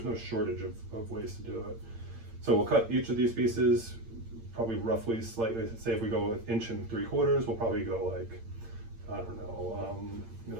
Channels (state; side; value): late; left; 8.8 ms